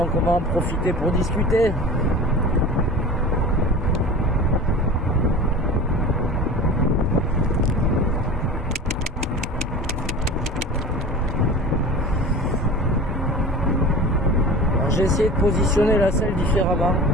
on va en profiter pour discuter. Alors, j'ai essayé de positionner la selle différemment,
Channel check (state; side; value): normal; both; correlation 0.36